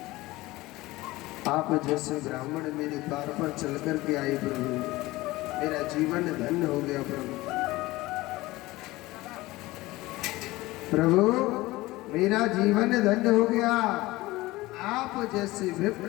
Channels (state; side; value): quieter; right; 19.3 dB